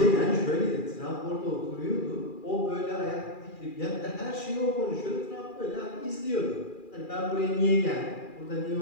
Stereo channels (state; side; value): late; right; 2.4 ms